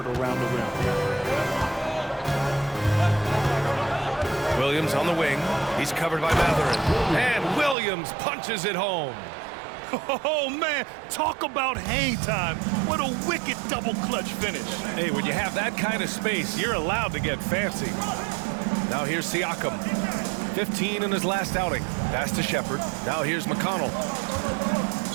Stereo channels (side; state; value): left; drops out; at 7.8 s